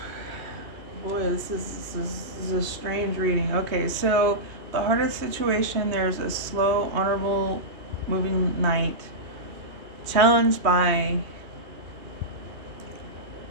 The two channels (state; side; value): late; left; 2.8 ms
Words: Boy, this is a strange reading. Okay, so the hardest situation, there's a slow, honorable, moving knight challenged by